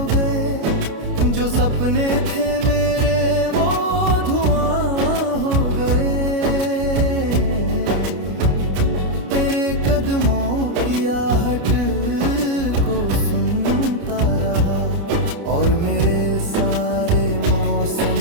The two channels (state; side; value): late; left; 29 ms